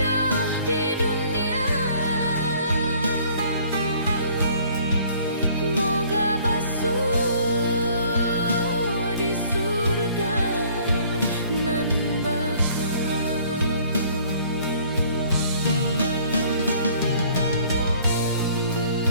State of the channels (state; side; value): inverted; both; correlation -0.57